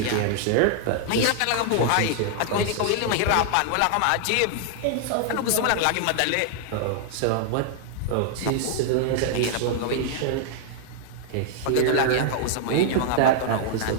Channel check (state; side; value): different; both; correlation -0.01